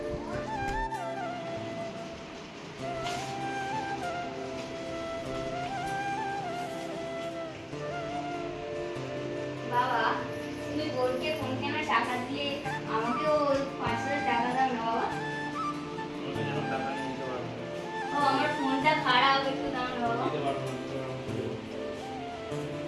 বাবা তুমি বোনকে ফোন কেনার টাকা দিয়ে আমাকেও 5,000 টাকা দাও না বাবা। ও আমার ফোনটা খারাপ, একটু দাও না বাবা।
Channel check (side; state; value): both; identical; correlation 1.00